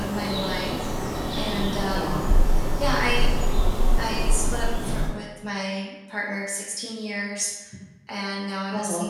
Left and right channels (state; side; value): identical; both; correlation 1.00